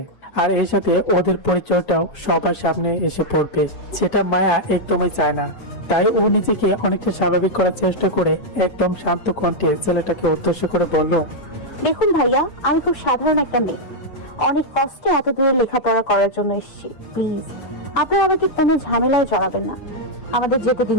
আর এর সাথে ওদের পরিচয়টাও সবার সামনে এসে পড়বে, সেটা মায়া একদমই চায় না। তাই ও নিজেকে অনেকটা স্বাভাবিক করার চেষ্টা করে একদম শান্ত কণ্ঠে ছেলেটাকে উদ্দেশ্য করে বলল, দেখুন ভাইয়া, আমি খুব সাধারণ একটা মেয়ে, অনেক কষ্টে এত দূরে লেখাপড়া করার জন্য এসেছি। প্লিজ আপনি আমাকে কোনো ঝামেলায় জড়াবেন না, আমাদের যেতে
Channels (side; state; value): right; late; 7.0 ms